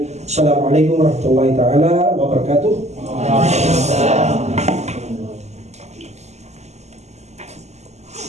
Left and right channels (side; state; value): left; late; 0.33 ms